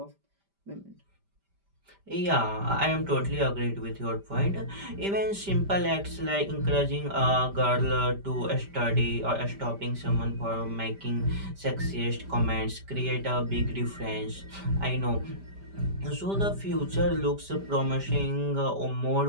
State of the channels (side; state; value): left; late; 5.1 ms